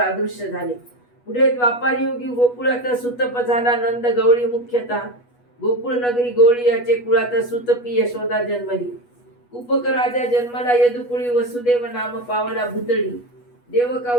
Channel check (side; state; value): right; late; 8.2 ms